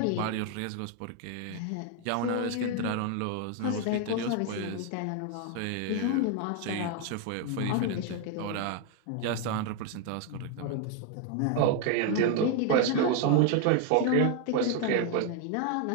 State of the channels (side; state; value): both; different; correlation 0.01